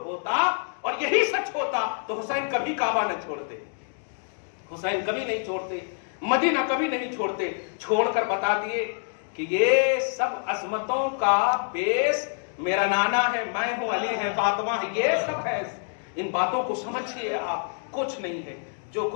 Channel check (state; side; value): silent; right; 60 dB below the other